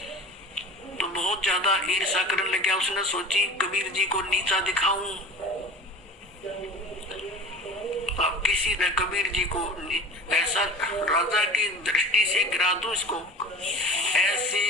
तो बहुत ज्यादा ईर्षा करने लग गया। उसने सोची कबीर जी को नीचा दिखाऊं, अब किसी ने कबीर जी को ऐसा राजा की दृष्टि से गिरा दूं इसको। ऐसे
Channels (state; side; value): normal; both; correlation 0.37